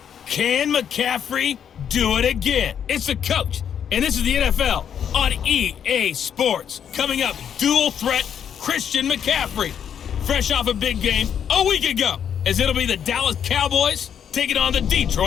Can McCaffrey do it again? It's the coach, and this is the NFL on EA Sports. Coming up, dual threat Christian McCaffrey. Fresh off a big game a week ago, as it'll be the Dallas Cowboys taking on the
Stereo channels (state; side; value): quieter; right; 8.5 dB